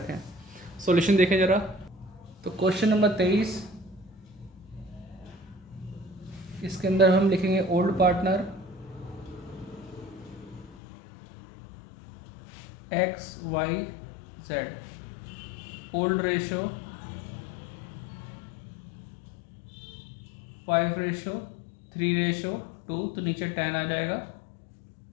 सॉल्यूशन देखें जरा। तो क्वेश्चन नंबर 23, इसके अंदर हम लिखेंगे old partner X Y Z, old ratio 5:3:2, तो नीचे 10 आ जाएगा।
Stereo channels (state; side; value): drops out; right; at 10.8 s